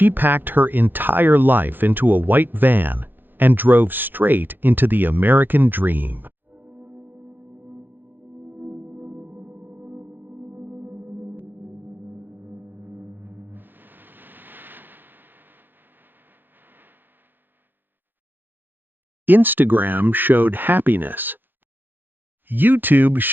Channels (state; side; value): late; left; 0.093 ms